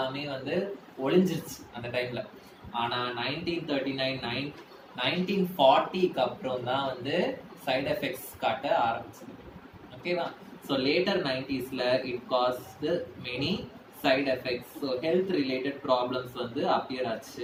வந்து ஒளிஞ்சிருச்சு அந்த டைம்ல. ஆனா 1939 1940க்கு அப்புறம் தான் வந்து சைடு எஃபெக்ட்ஸ் காட்ட ஆரம்பிச்சது. ஓகேவா? ஸோ லேட்டர் 90sல it caused many side effects. So health related problems வந்து அப்பியர்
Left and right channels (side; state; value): both; identical; correlation 1.00